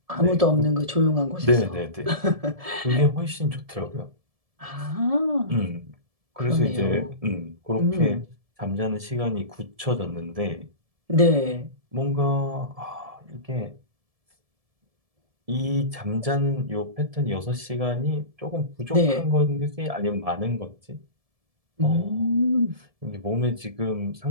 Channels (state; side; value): late; left; 1.7 ms